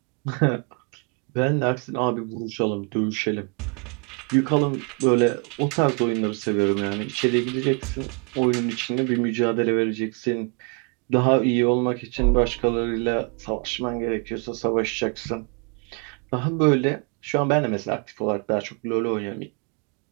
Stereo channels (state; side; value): quieter; left; 36.0 dB